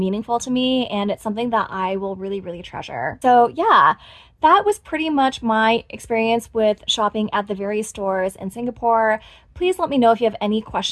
to me, and it's something that I will really, really treasure. So, yeah, that was pretty much my experience with shopping at the various stores in Singapore. Please let me know if you have any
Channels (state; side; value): identical; both; correlation 1.00